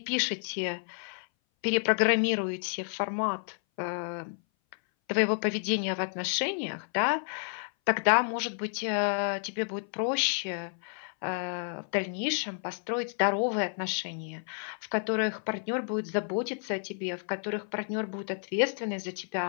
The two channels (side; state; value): right; silent; 57 dB below the other